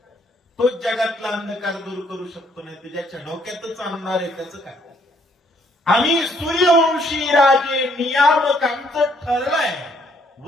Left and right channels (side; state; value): both; normal; correlation 0.67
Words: तोच जगातला अंधकार दूर करू शकतो, नाही तर ज्याच्या डोक्यातच आणणार आहे त्याचं काय? आम्ही सूर्यवंशी राजे नियामक. आमचं ठरलंय